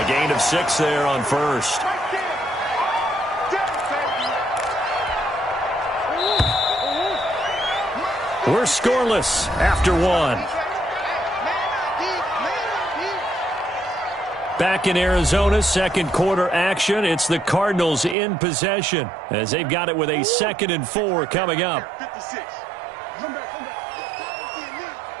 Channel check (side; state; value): left; drops out; at 18.2 s